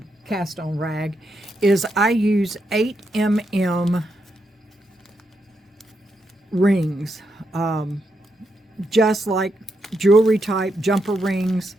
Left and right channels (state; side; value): normal; both; correlation 0.82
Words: cast-on rag is I use 8mm rings. Just like jewelry type jumper rings.